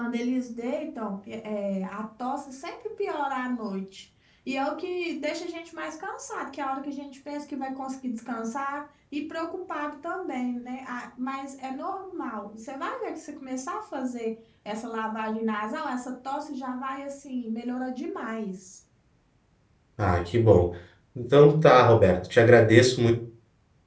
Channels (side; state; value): both; identical; correlation 1.00